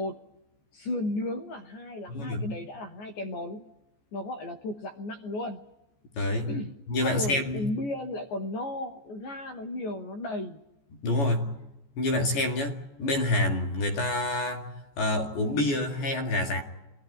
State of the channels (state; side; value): late; right; 14 ms